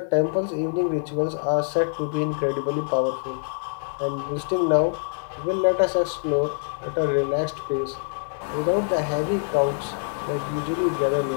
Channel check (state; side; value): silent; right; digital silence